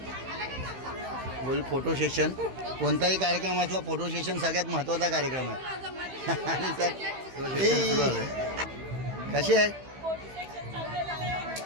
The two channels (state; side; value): late; left; 15 ms